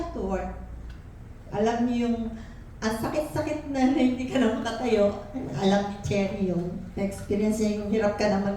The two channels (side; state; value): both; identical; correlation 1.00